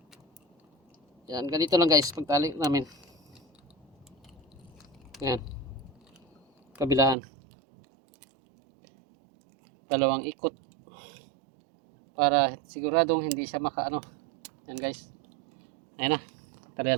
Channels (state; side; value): drops out; left; at 7.2 s